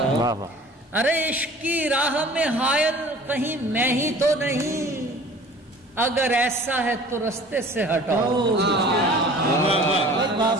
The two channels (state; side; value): normal; both; correlation 0.46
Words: ارے عشق کی راہ میں حائل کہیں میں ہی تو نہیں. اگر ایسا ہے تو رستے سے ہٹاؤ.